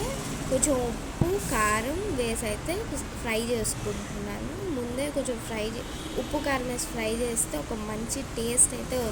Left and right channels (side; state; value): both; identical; correlation 1.00